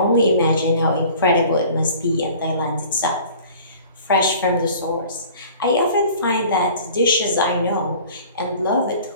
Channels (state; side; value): inverted; both; correlation -0.47